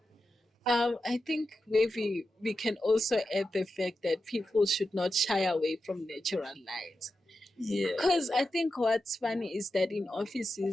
I think maybe we can also add the fact that people should not shy away from natural light. Yeah. Because I think what's funny is that in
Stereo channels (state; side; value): normal; both; correlation 0.90